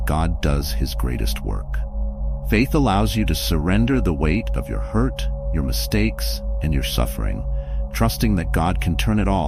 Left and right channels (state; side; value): identical; both; correlation 1.00